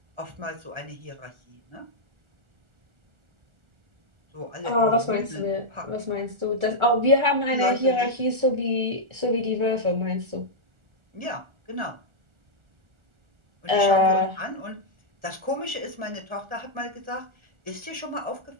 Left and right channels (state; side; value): late; left; 1.4 ms